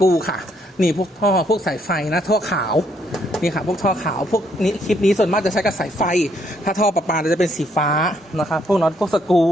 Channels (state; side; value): normal; both; correlation 0.71